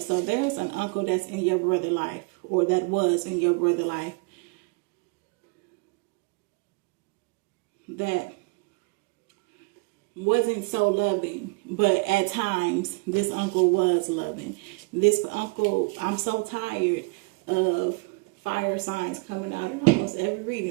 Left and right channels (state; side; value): quieter; left; 30.0 dB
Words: there's an uncle that's in your brother's life, or that was in your brother's life, that wasn't so loving, but at times this uncle was loving. This uncle, I'm so tired of fire signs coming out in almost every